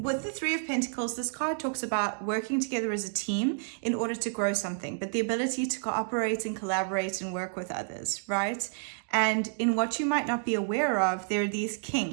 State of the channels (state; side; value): silent; left; digital silence